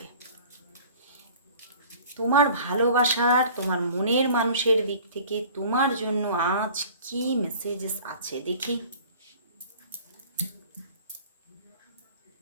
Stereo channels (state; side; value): inverted; both; correlation -0.46